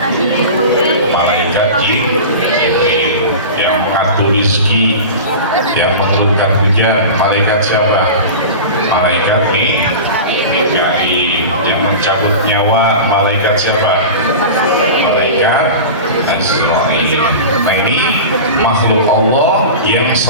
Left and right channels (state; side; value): inverted; both; correlation -0.31